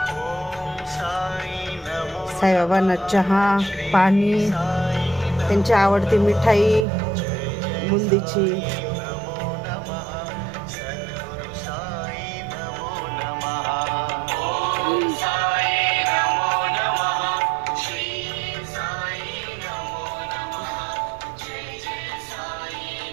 साईबाबांना चहा पाणी, त्यांची आवडती मिठाई बुंदीची.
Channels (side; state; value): left; drops out; at 6.9 s